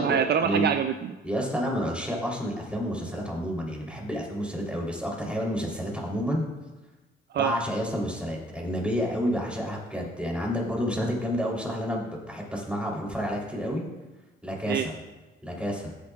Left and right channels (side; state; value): both; normal; correlation 0.56